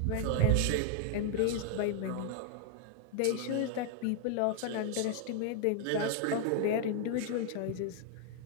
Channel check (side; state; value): both; different; correlation 0.00